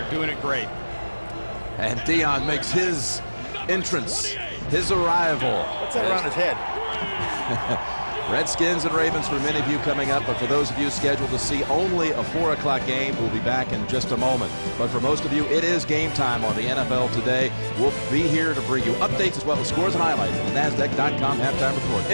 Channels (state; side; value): inverted; both; correlation -1.00